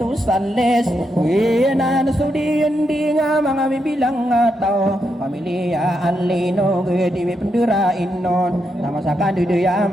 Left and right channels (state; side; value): normal; both; correlation 0.82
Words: sales wina na sudian di nga mga bibilang tao pamilya anlino di mi pendera inon nama sakan duya